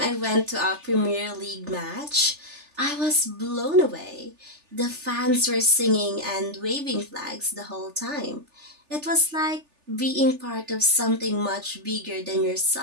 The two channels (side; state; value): left; late; 3.4 ms